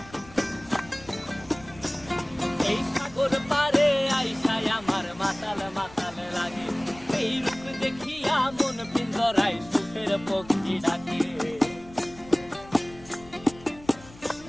এই সাগর পারে আইসায় আমার মাতাল মাতাল লাগে, এই রূপ দেখিয়া মন পিঞ্জরায় সুখের পক্ষী ডাকে।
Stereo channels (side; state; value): left; noise; rumble, 21 dB below the sound